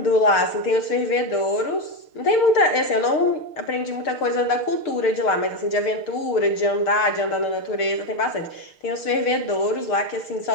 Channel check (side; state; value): right; late; 6.6 ms